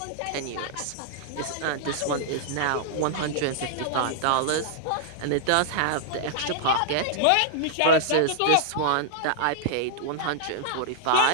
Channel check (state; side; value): different; both; correlation -0.01